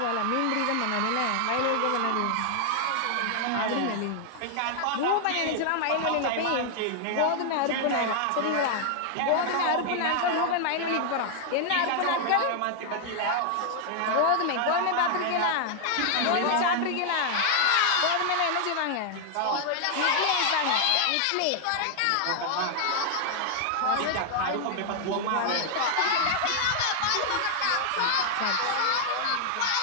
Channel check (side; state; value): both; different; correlation 0.00